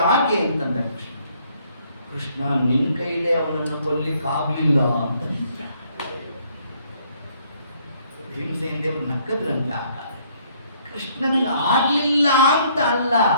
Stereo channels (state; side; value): inverted; both; correlation -0.66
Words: ಅಂತಂದ ಕೃಷ್ಣ, ನಿನ್ನ ಕೈಲೇ ಅವನನ್ನು ಕೊಲ್ಲಿಕ್ಕಾಗಲಿಲ್ಲ ಅಂತ. ಭೀಮಸೇನ ದೇವರು ನಕ್ಕದ್ರಂತೆ. ಆಗ ಕೃಷ್ಣನಿಗೆ ಆಗ್ಲಿಲ್ಲ ಅಂತ ಅಲ್ಲ,